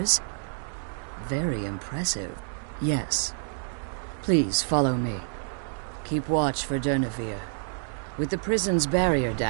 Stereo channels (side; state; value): left; silent; digital silence